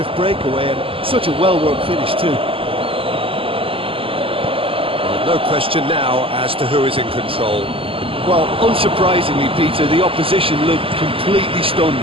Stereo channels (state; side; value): late; left; 0.27 ms